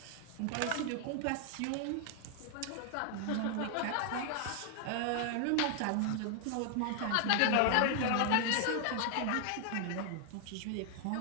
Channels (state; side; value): different; both; correlation 0.00